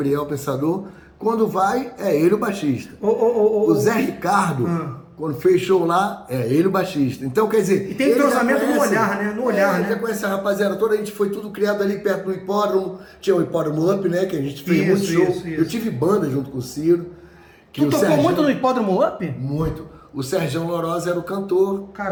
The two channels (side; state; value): both; identical; correlation 1.00